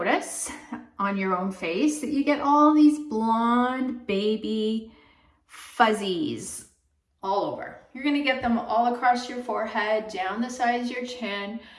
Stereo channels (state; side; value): identical; both; correlation 1.00